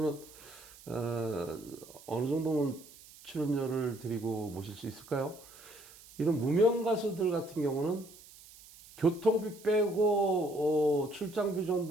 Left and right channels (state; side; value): noise; right; hiss, 21 dB below the sound